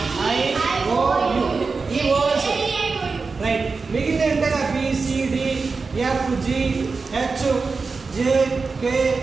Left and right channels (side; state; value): left; quieter; 4.4 dB